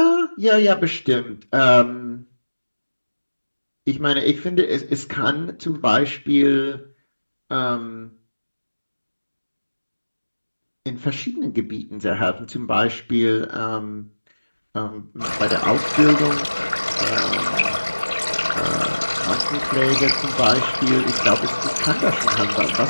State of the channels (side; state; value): both; inverted; correlation -1.00